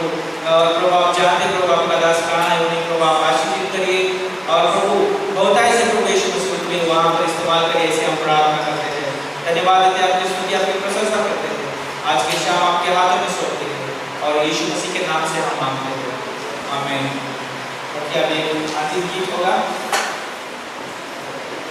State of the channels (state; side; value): identical; both; correlation 1.00